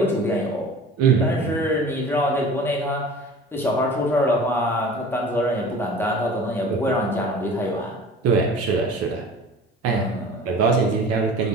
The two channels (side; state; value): both; normal; correlation 0.42